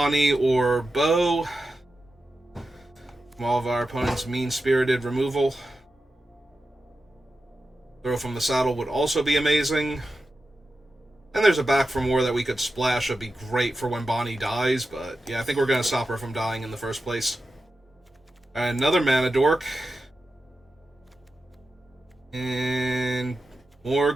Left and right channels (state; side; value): normal; both; correlation 0.91